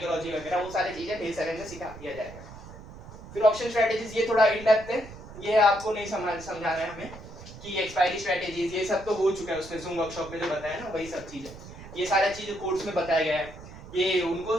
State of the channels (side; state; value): right; noise; rumble, 15 dB below the sound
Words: वगैरह, वो सारी चीजें डे 7 में सिखा दिया जाएगा। फिर ऑप्शन स्ट्रेटजीज ये थोड़ा इन डेप्थ है, ये आपको नहीं समझाना है हमें कि एक्सपायरी स्ट्रेटजीज ये सब तो हो चुका है उसमें, जूम वर्कशॉप में जो बताया ना वही सब चीजें, ये सारा चीजें कोर्स में बताया गया है। ये उनको